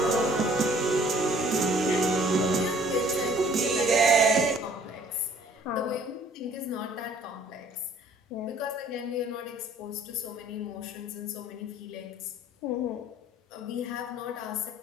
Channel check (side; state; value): both; normal; correlation 0.56